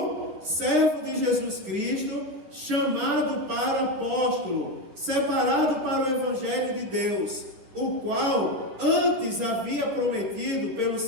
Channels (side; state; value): left; late; 10 ms